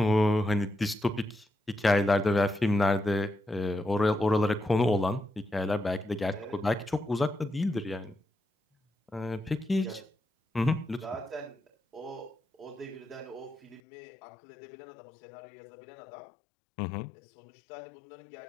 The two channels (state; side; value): drops out; right; at 13.8 s